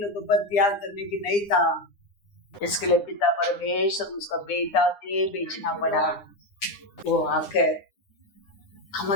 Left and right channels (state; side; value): late; right; 9.9 ms